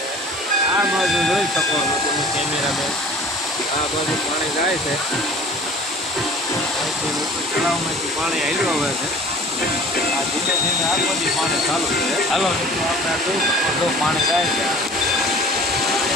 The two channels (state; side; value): normal; both; correlation 0.45